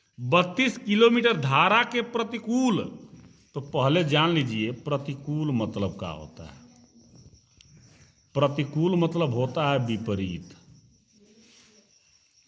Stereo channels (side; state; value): both; identical; correlation 1.00